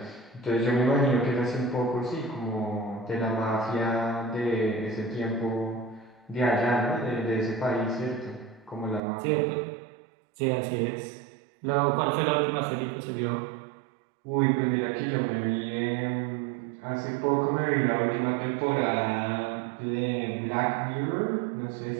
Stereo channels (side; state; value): left; drops out; at 9.0 s